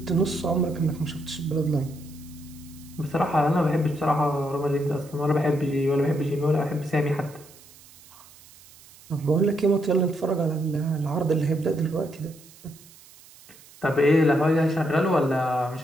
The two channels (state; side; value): noise; right; hiss, 23 dB below the sound